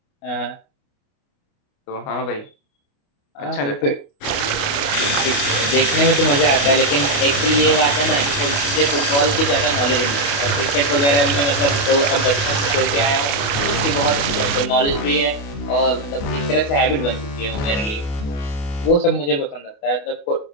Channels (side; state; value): right; late; 29 ms